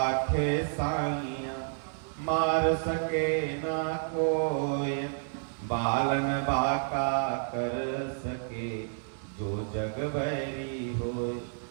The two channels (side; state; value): left; silent; digital silence